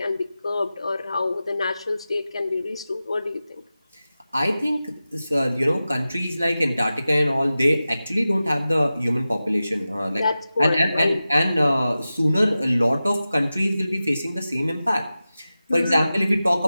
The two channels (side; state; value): both; inverted; correlation -0.94